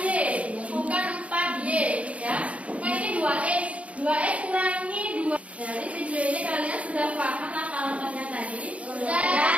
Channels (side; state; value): left; late; 0.064 ms